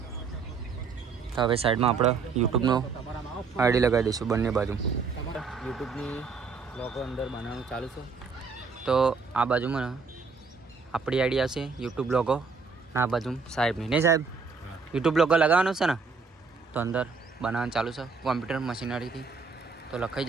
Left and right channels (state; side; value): quieter; left; 5.0 dB